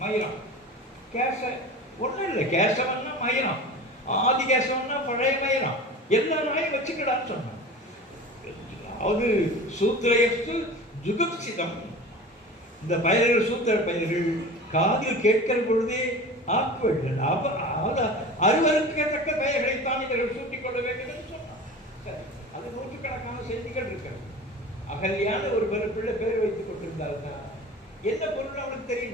மயிரம். கேச ஒன்றும் இல்லை, கேசவன்னா மயிரம், ஆதி கேசவன்னா பழைய மயிரம். எல்லா நாயும் வச்சுக்கடான்னு சொன்னான். அது சூத்திரயஸ்து ஜுகுப்சிதம். இந்த பயிர்கள் சூத்திர பயிர்கள் காதில் கேட்கிற பொழுதே ஆக்குவர்கள் அறுவருக்கத்தக்க பெயர்களைத்தான் இவர்கள் சூட்டிக் கொள்ள வேண்டும் என்று சொன்னார். சரி, அது நூற்றுக்கணக்கான செய்திகள் இருக்கிறது. அகல்யான ஒரு பிள்ளை பேர் வைத்துக் கொண்டிருந்தாருன்னா என்ன பொருள் அவனுக்கு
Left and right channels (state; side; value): normal; both; correlation 0.35